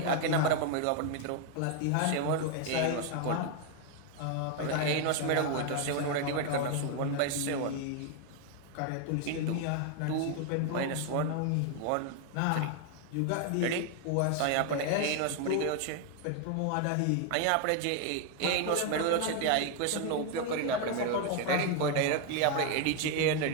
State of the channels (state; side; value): different; both; correlation 0.01